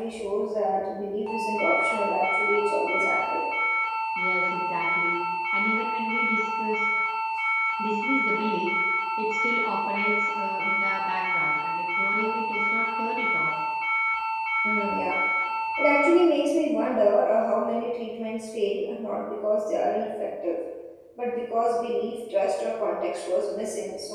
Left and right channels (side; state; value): both; identical; correlation 1.00